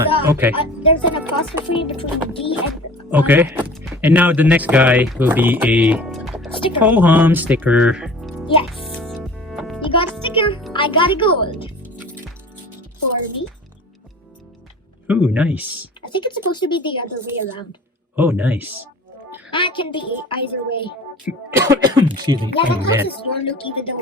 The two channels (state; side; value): normal; both; correlation 0.42